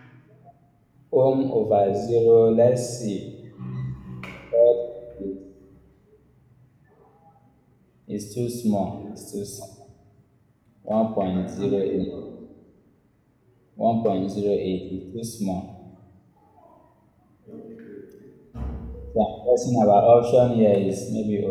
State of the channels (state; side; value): identical; both; correlation 1.00